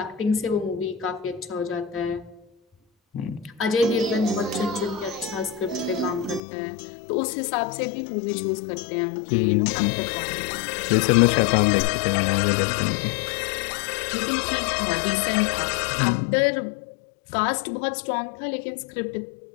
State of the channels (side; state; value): right; drops out; at 6.4 s